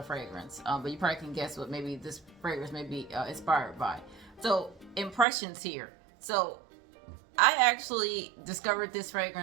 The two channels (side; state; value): left; drops out; at 5.2 s